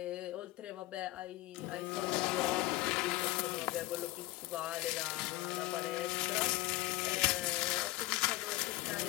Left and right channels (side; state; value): right; quieter; 19.3 dB